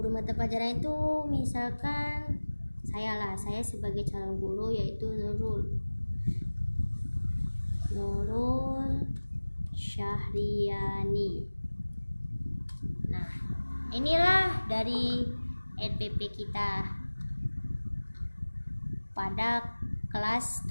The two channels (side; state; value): both; inverted; correlation -1.00